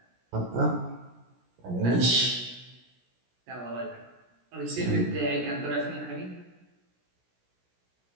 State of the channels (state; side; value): late; left; 17 ms